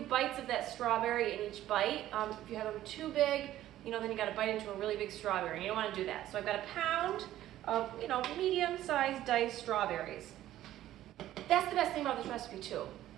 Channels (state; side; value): quieter; left; 13.5 dB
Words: of that strawberry in each bite. If you have them too big, then you got to bite into a really big strawberry, and you don't want to do that. So I've got a pound of, medium-sized diced strawberries. That's the best thing about this recipe too.